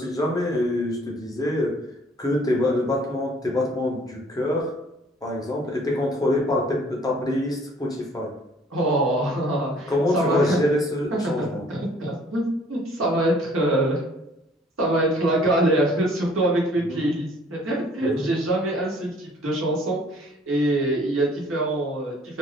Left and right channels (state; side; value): normal; both; correlation 0.57